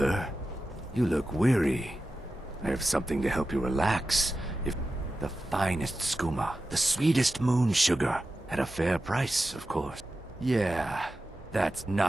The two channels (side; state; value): both; normal; correlation 0.92